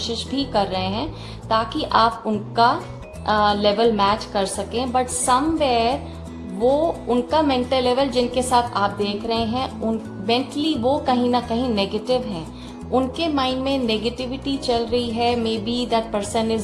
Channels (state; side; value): identical; both; correlation 1.00